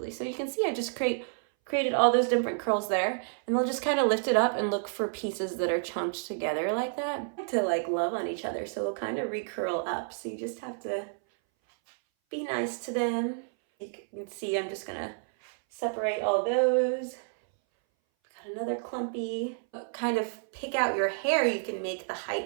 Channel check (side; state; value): left; silent; 58 dB below the other